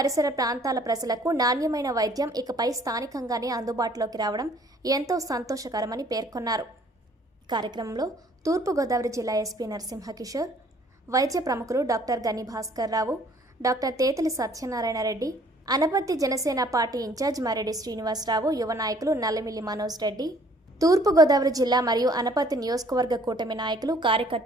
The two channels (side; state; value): both; normal; correlation 0.58